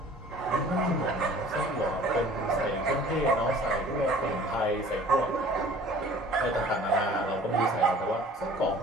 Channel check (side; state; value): both; normal; correlation 0.49